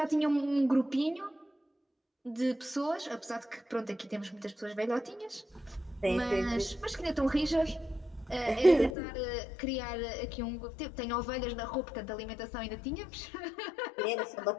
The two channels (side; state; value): right; drops out; at 8.9 s